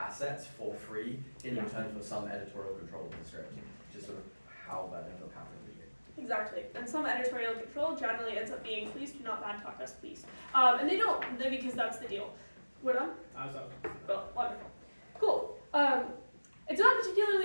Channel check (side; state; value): both; inverted; correlation -1.00